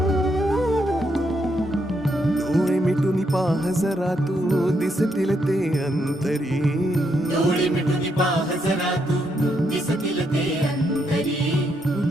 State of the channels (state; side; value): normal; both; correlation 0.78